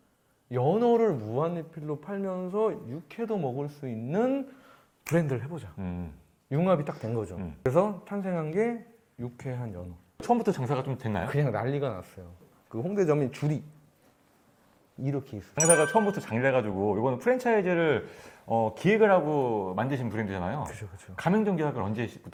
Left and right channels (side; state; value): both; identical; correlation 1.00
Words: 연어를 무한리필로 팔면서 육회도 먹을 수 있는 브랜드를 해보자. 융합이 딱 된 거죠. 그래서 탄생한 게 유쾌한 연어. 처음부터 장사가 좀 됐나요? 그냥 난리가 났어요. 그 홍대점이 줄이 이렇게 있어요. 장사가 처음부터 잘 돼가지고 이거는 프랜차이즈를 기획을 하고 만드신 브랜드잖아요. 그죠, 그죠. 가맹점 계약을